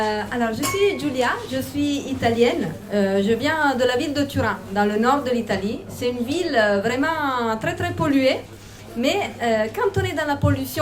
Alors, je suis Giulia, je suis italienne. Je viens de la ville de Turin, dans le nord de l'Italie. C'est une ville vraiment très très polluée. Mais quand on est dans la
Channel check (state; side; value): identical; both; correlation 1.00